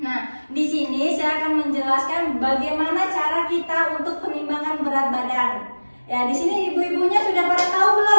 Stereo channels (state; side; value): inverted; both; correlation -1.00